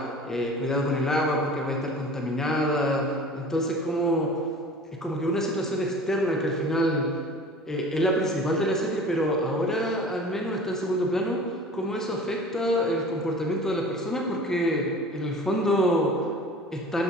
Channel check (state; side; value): normal; both; correlation 0.42